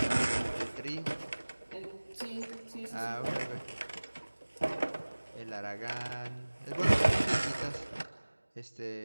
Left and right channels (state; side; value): inverted; both; correlation -1.00